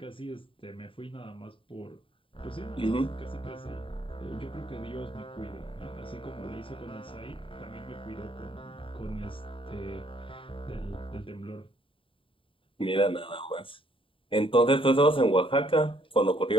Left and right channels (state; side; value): late; right; 0.25 ms